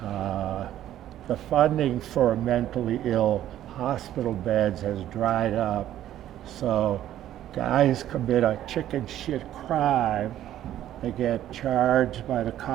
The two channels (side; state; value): left; quieter; 12.3 dB